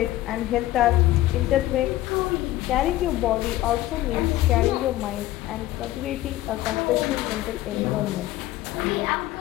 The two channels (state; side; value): quieter; right; 15.5 dB